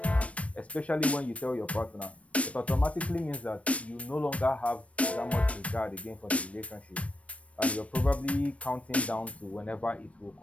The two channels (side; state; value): right; late; 0.064 ms